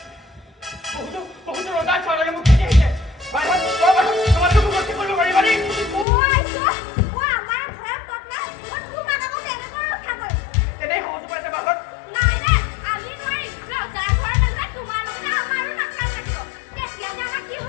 বহুতো ৰজাৰ ছোৱালীয়ে মোক খেদি আহিছে তোমালোকে মোক ৰক্ষা কৰিব পাৰিবানে আমাৰ ঘৰত পত্না তোমাক আকৌ কেনেকৈ ৰক্ষা কৰিম এনেই সহজ পাইছে বাহত নাই আমি নোৱাৰিম ৰজাৰ ঘৰৰ মাজত তোমাৰ লগতে আমাৰো নাখাল লাগিব তেতিয়া যে আমাৰ কি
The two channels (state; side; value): drops out; right; at 6.1 s